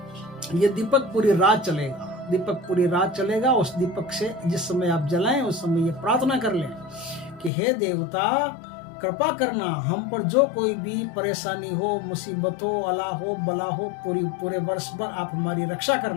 ये दीपक पूरी रात चलेगा। दीपक पूरी रात चलेगा। उस दीपक से जिस समय आप जलाएं, उस समय ये प्रार्थना कर लें कि हे देवता, कृपा करना, हम पर जो कोई भी परेशानी हो, मुसीबत हो, अला हो, बला हो, पूरे वर्ष भर आप हमारी रक्षा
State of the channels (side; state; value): right; drops out; at 7.5 s